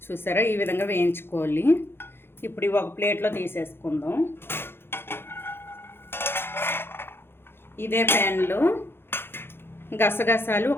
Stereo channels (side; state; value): right; late; 0.11 ms